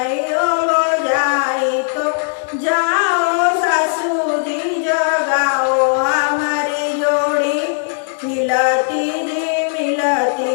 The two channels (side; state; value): right; silent; digital silence